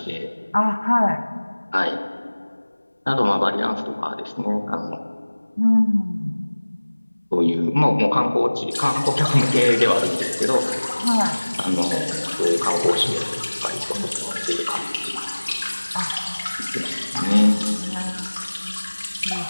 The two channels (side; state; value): both; inverted; correlation -1.00